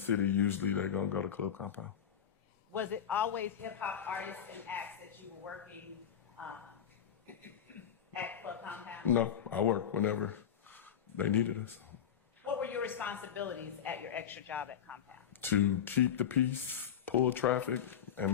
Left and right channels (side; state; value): right; quieter; 8.8 dB